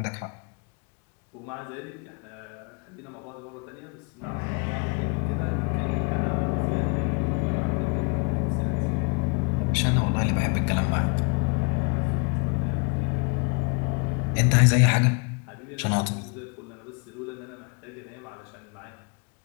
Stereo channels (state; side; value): quieter; right; 34.0 dB